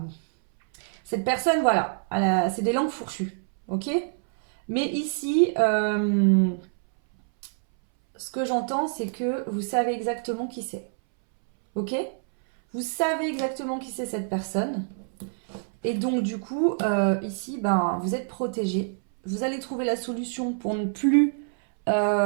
cette personne, voilà, c'est des langues fourchues, ok? Mais ici, ce que j'entends, c'est que vous savez exactement qui c'est, ok? Vous savez exactement qui c'est cette personne. Et donc, du coup, ici, ben, vous êtes protégé. Vous allez trouver la solution pour ne plus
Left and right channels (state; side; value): silent; left; 61 dB below the other